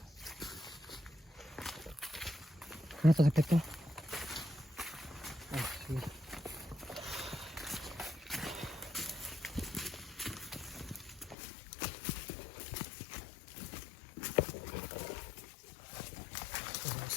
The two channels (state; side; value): drops out; right; at 11.4 s